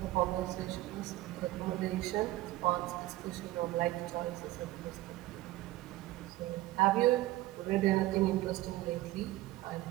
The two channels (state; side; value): quieter; left; 17.0 dB